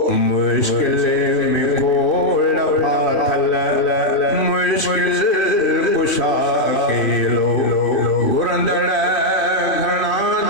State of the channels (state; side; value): late; right; 3.1 ms